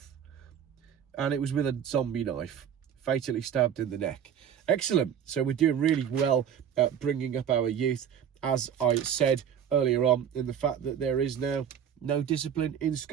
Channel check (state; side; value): quieter; left; 8.6 dB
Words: And it was with a zombie knife. Fatally stabbed in the neck. Excellent. So we're doing really well at bringing up our youth. As I said earlier on, in the fact that there is now no discipline in